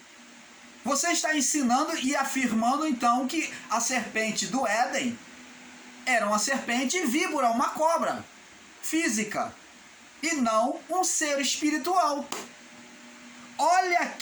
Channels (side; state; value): both; identical; correlation 1.00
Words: você está ensinando e afirmando então que a serpente do Éden era uma serpente víbora, uma cobra física, e não um ser espiritual. Olha